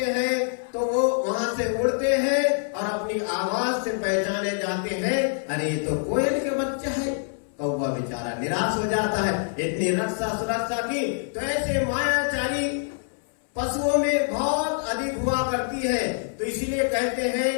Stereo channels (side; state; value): right; silent; 61 dB below the other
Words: हैं तो वो वहां से उड़ते हैं और अपनी आवाज से पहचाने जाते हैं, अरे ये तो कोयल के बच्चा है। कौवा बेचारा निराश हो जाता है, इतनी रक्षा सुरक्षा की। तो ऐसे मायाचारी पशुओं में बहुत अधिक हुआ करती है। तो इसीलिए कहते हैं